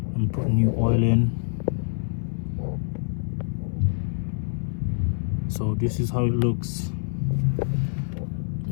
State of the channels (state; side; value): silent; right; 61 dB below the other